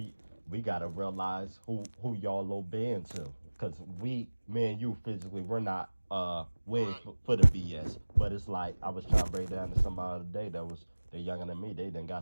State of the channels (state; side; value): inverted; both; correlation -1.00